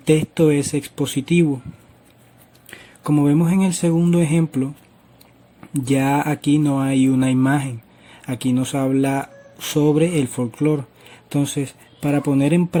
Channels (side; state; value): both; identical; correlation 1.00